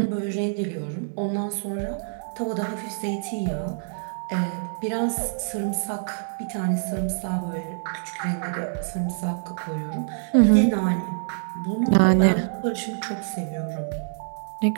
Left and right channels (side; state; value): left; silent; 61 dB below the other